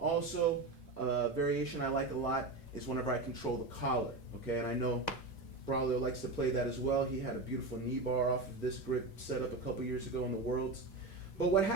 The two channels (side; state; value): left; quieter; 3.3 dB